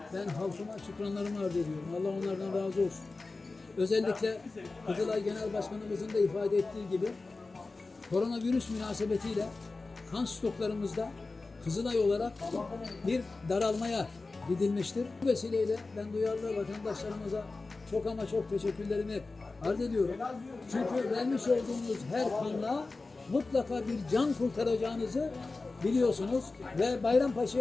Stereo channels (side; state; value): right; quieter; 3.6 dB